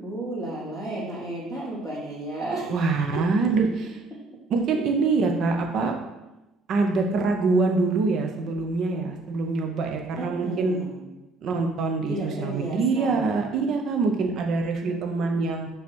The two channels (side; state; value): left; quieter; 3.4 dB